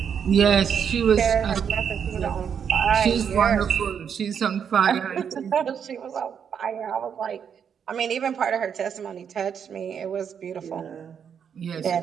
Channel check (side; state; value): left; quieter; 7.6 dB